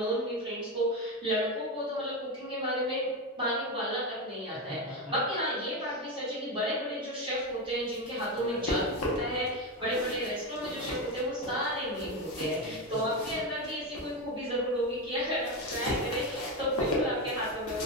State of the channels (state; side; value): normal; both; correlation 0.14